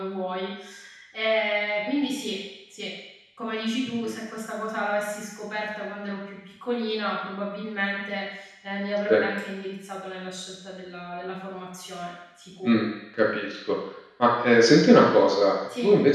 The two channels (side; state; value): both; identical; correlation 1.00